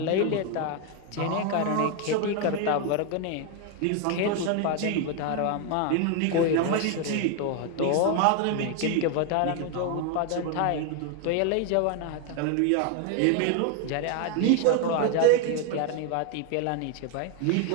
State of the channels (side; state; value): both; different; correlation 0.01